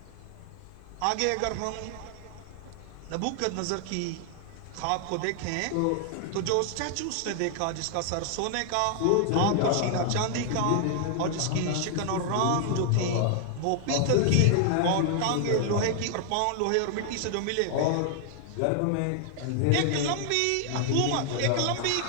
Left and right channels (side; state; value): both; different; correlation 0.00